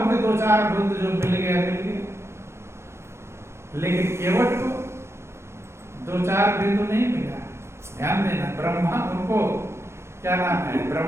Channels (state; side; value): late; left; 0.13 ms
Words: हमें 2-4 बूंद जो मिल गया, लेकिन केवट को 2-4 बिंदु नहीं मिला। ध्यान देना, ब्रह्मा उनको क्या नाम है,